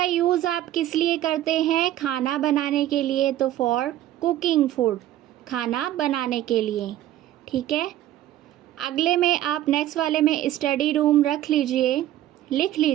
यूज़ आप किस लिए करते हैं? खाना बनाने के लिए। तो फॉर कुकिंग फूड, खाना बनाने के लिए। ठीक है, अगले में आप नेक्स्ट वाले में स्टडी रूम रख लीजिए, लिख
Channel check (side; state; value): left; quieter; 13.2 dB